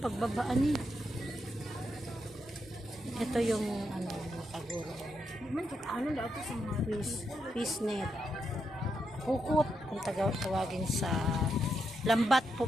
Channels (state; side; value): normal; both; correlation 0.82